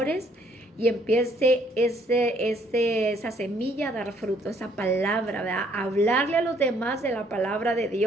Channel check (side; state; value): both; normal; correlation 0.65